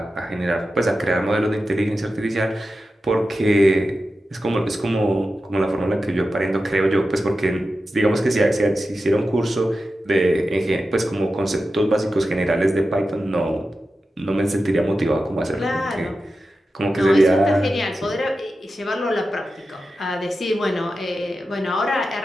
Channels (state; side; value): normal; both; correlation 0.92